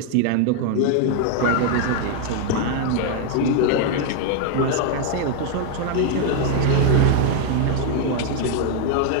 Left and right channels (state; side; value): different; both; correlation 0.00